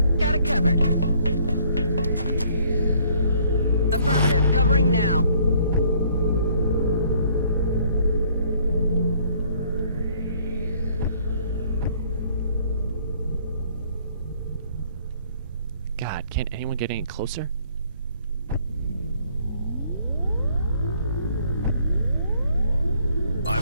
Got it covered. Affirmative. Covering now. God, can't anyone get any closer?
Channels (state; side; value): inverted; both; correlation -0.62